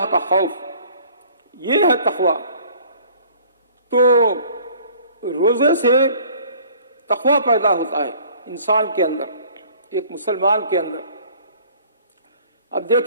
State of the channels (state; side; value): inverted; both; correlation -0.52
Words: کا خوف، یہ ہے تقوی۔ تو روزے سے تقوی پیدا ہوتا ہے انسان کے اندر، ایک مسلمان کے اندر۔ اب